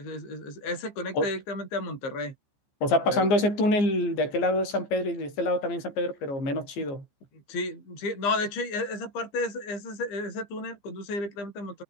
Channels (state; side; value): late; right; 15 ms